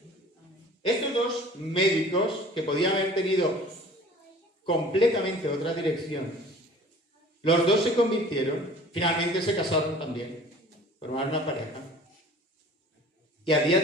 Estos dos médicos, que podían haber tenido completamente otra dirección, los dos se convirtieron, finalmente se casaron también, formaron una pareja, y a día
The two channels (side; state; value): both; normal; correlation 0.47